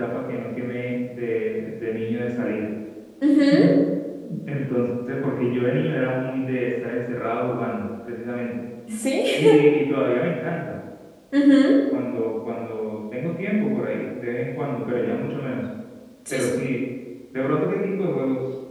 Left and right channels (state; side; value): identical; both; correlation 1.00